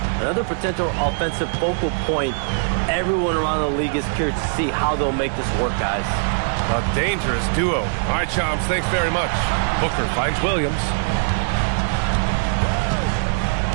another potential offensive focal point. Everyone around the league is curious to see how they'll make this work, guys. A dangerous duo. All right, Shams, thanks very much. Booker finds Williams.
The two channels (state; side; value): silent; left; 65 dB below the other